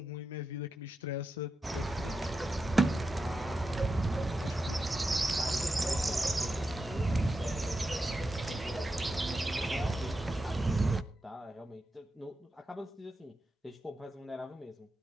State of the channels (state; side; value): normal; both; correlation 0.89